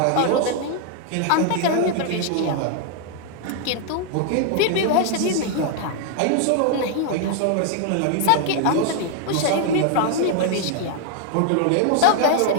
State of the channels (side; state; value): both; different; correlation 0.00